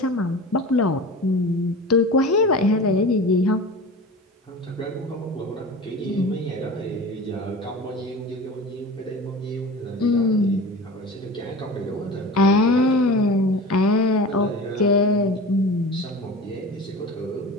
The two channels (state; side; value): normal; both; correlation 0.34